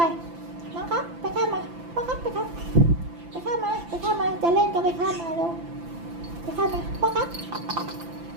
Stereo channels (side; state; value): left; late; 5.9 ms